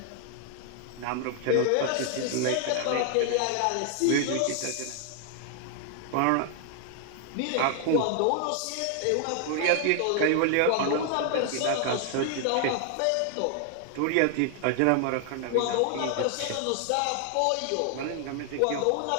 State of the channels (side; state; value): both; different; correlation 0.00